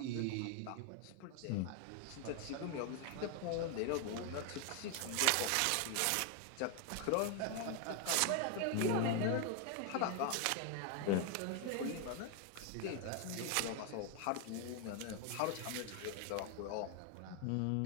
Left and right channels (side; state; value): both; different; correlation 0.01